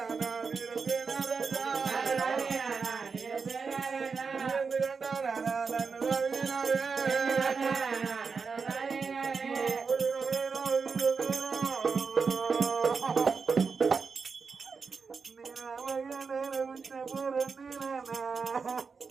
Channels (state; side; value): quieter; left; 5.2 dB